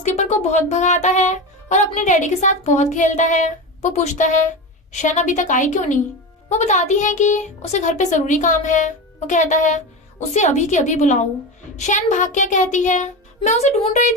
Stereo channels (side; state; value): both; normal; correlation 0.22